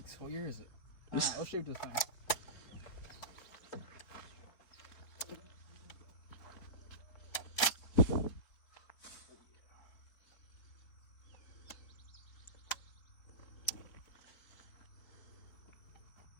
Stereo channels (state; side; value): late; right; 4.0 ms